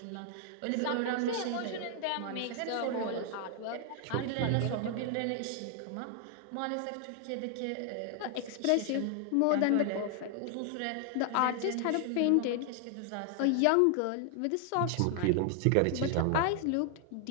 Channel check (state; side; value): different; both; correlation 0.00